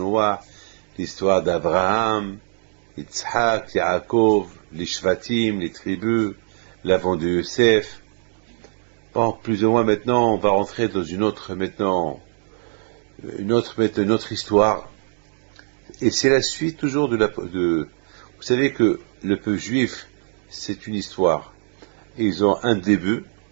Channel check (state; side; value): silent; left; digital silence